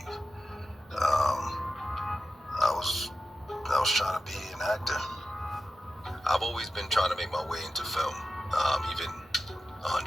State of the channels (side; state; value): both; normal; correlation 0.92